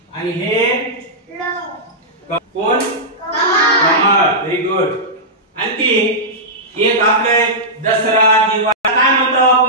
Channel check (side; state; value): both; normal; correlation -0.12